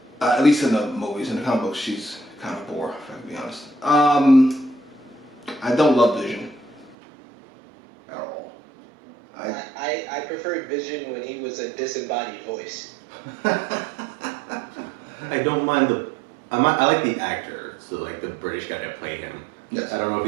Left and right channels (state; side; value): drops out; left; at 7.0 s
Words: At least in the movies. In the comic books, she's kind of boring, if I can be honest. I don't love Vision at all. I preferred Vision when he was a disembodied voice. I don't mind I like the actor, so like the British guy that played him. Yes. I don't know